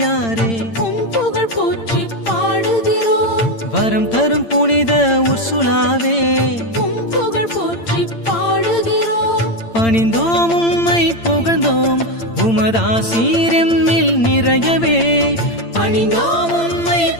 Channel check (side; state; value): right; late; 8.8 ms